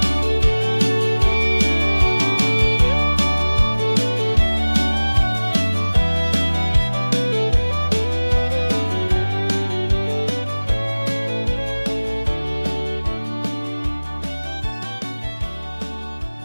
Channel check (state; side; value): inverted; both; correlation -1.00